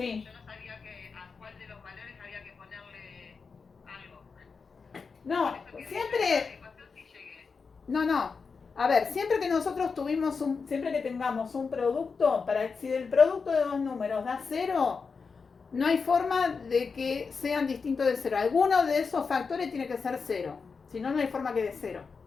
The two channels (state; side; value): quieter; right; 5.1 dB